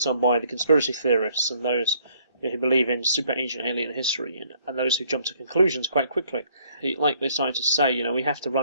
on by the conspiracy theorists and those who believe in super ancient alien history, and those who jump to conclusions quite quickly. Like the scientists say, we have to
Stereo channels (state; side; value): inverted; both; correlation -0.64